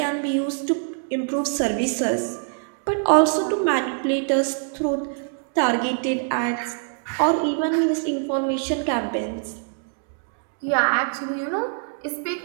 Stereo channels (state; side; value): silent; left; 63 dB below the other